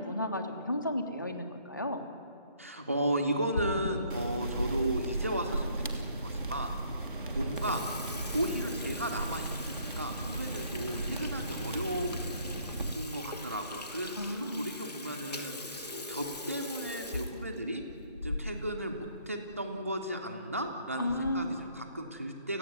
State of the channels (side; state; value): both; inverted; correlation -0.63